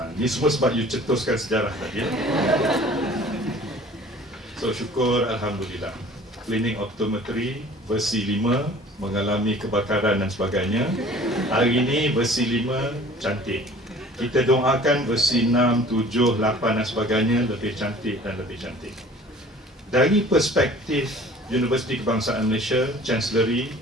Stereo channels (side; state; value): both; normal; correlation 0.48